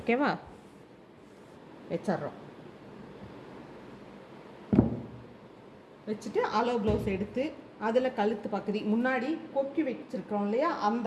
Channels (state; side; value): identical; both; correlation 1.00